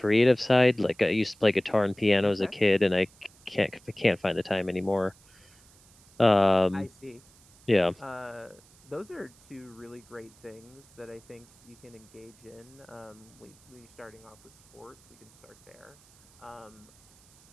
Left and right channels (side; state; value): right; noise; hiss, 27 dB below the sound